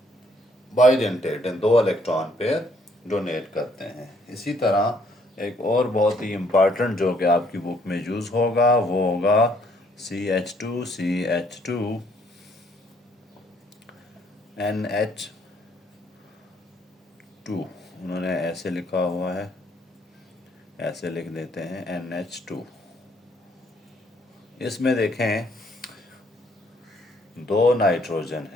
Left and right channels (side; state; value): both; normal; correlation 0.66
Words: बाइडेंटेट हैं, दो इलेक्ट्रॉन पेयर डोनेट करते हैं। इसी तरह एक और बहुत ही इम्पॉर्टेंट जो कि आपकी बुक में यूज़ होगा वो होगा CH2 NH2। उन्होंने ऐसे लिखा हुआ है, ऐसे लिख देते हैं NH2। इसमें देखें दो नाइट्रोजन